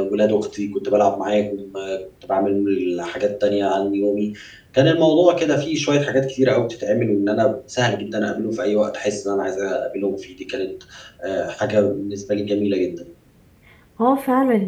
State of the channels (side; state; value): both; identical; correlation 1.00